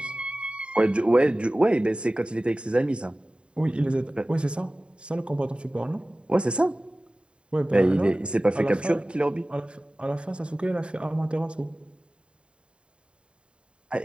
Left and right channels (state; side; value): late; left; 0.053 ms